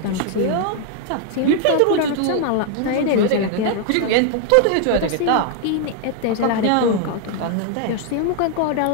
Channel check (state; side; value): different; both; correlation 0.00